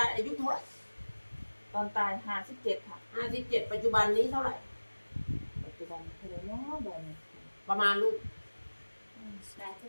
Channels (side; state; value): both; inverted; correlation -1.00